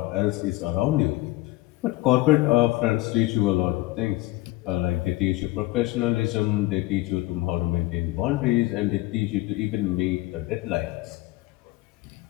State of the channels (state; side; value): quieter; right; 18.5 dB